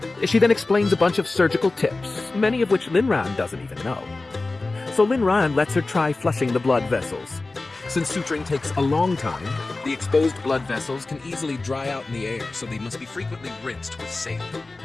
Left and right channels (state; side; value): quieter; right; 3.3 dB